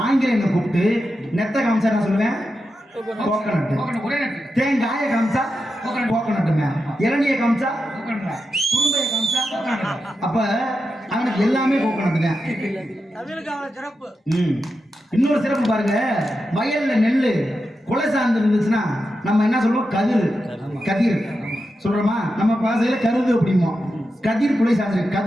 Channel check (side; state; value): both; normal; correlation 0.88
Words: ஆங்கிலேயனை கூப்பிட்டு நெத்த காமிச்சா என்ன சொல்லுவேன்? கோகனட். தேங்காயை காமிச்சா கோகனட்டுமே. இளநியை காமிச்சா குறும்பையை காமிச்சா அப்ப அவனுக்கு எல்லாமே கோகனட்டுங்க. இன்னொரு சிறப்பு பாருங்க. வயல்ல நெல்லு கொலை சார்ந்து இருந்துச்சுன்னா நம்ம என்ன சொல்லுவோம்? கதிர். கதிர் சொல்றோமா? நம்ம பாசையில கருது அப்படிமோ. கதிர் குலை சார்ந்து